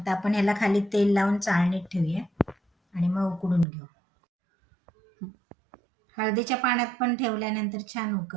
आपण ह्याला खाली तेल लावून चाळणीत ठेवूया आणि मग उकडून घेऊ. हळदीच्या पाण्यात पण ठेवल्यानंतर छान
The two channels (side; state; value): left; drops out; at 3.7 s